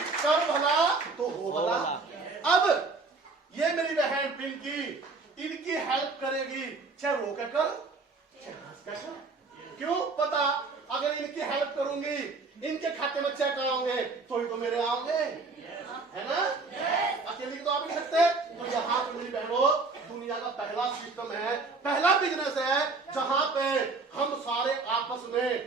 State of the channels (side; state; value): left; quieter; 3.9 dB